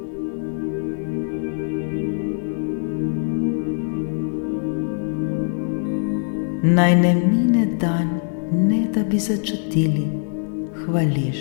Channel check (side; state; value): right; silent; 64 dB below the other